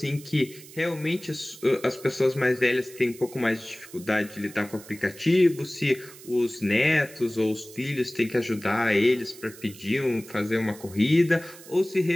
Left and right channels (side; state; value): right; noise; hiss, 19 dB below the sound